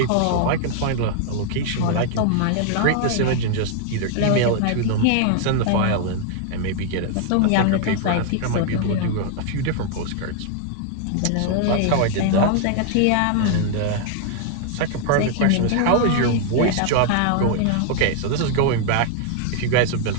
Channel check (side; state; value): both; different; correlation 0.00